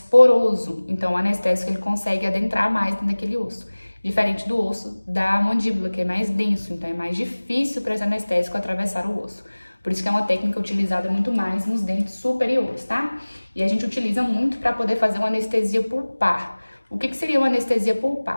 então o anestésico ele consegue adentrar mais naquele osso. Diferente do osso da mandíbula, que é mais denso, então é mais difícil para esse anestésico atravessar o osso. Por isso que é uma técnica utilizada muito mais nos dentes superiores, tá? E a gente utiliza muito para poder fazer uma anestesia pulpar. O que seria uma anestesia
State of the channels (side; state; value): both; inverted; correlation -1.00